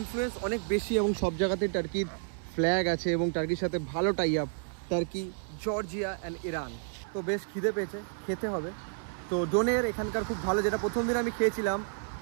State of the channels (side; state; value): left; silent; 57 dB below the other